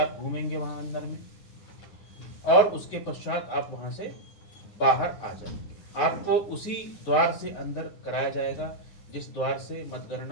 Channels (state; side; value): late; right; 9.4 ms